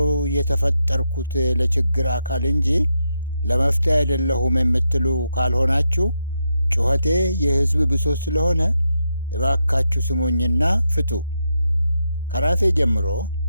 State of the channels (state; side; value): inverted; both; correlation -0.83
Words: የተፈጠርኩት ለችግር አካል እንጂ ለመፍትሄ አይደለሁም የምትሉ ካልሆናችሁ ጩኸቴ የሕዝብ ብሶት ስለሆነ እባካችሁ ስሙኝና ፍቱ። ከራሴ ጀምሮ